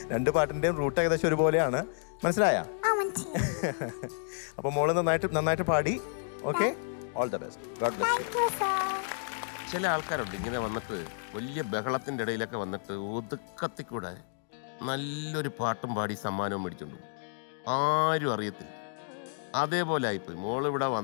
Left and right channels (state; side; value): silent; right; digital silence